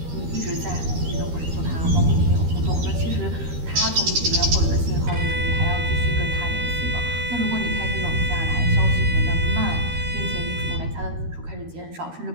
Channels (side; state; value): left; late; 13 ms